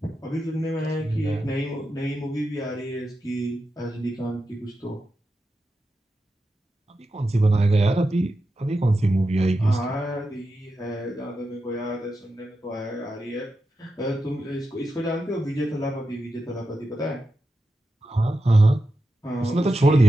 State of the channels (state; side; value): normal; both; correlation 0.90